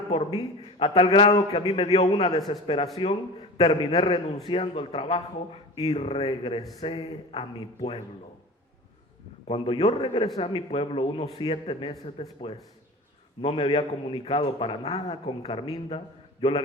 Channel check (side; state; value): both; normal; correlation 0.35